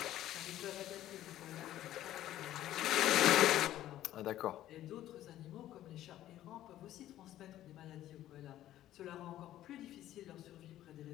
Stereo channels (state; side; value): quieter; right; 13.3 dB